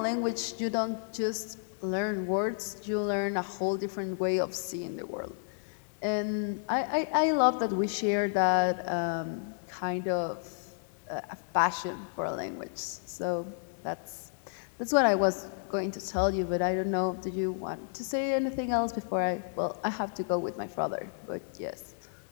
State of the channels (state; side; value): silent; right; digital silence